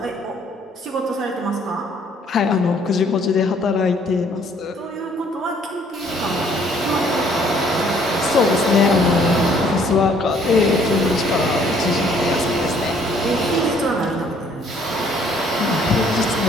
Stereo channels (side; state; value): both; normal; correlation 0.61